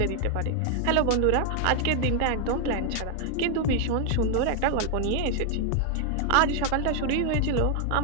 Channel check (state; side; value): different; both; correlation 0.00